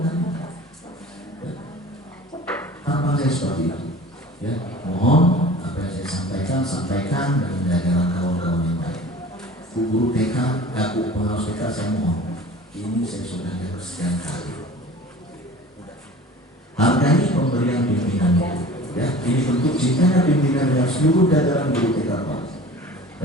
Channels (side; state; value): both; normal; correlation 0.42